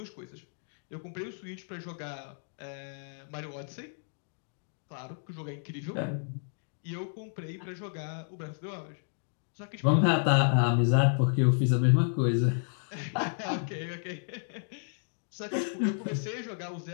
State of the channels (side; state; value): right; silent; digital silence